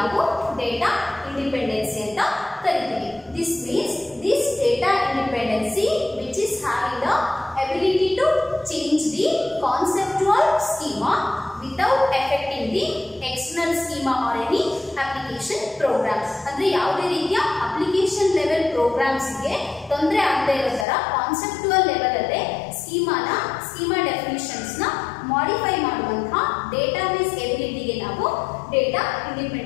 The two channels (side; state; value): right; drops out; at 20.9 s